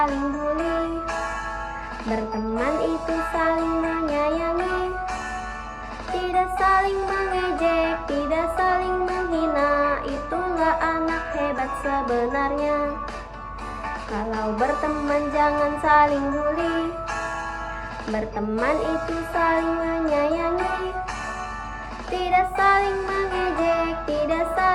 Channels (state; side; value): identical; both; correlation 1.00